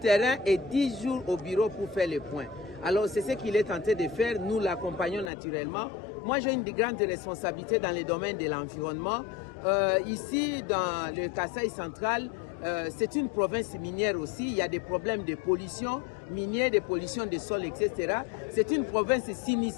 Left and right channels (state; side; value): drops out; right; at 5.3 s